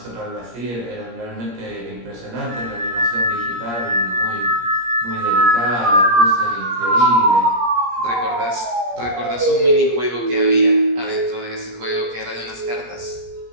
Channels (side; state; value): left; late; 17 ms